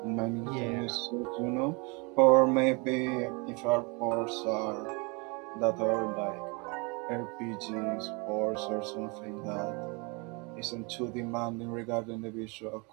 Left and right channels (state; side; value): quieter; left; 30.6 dB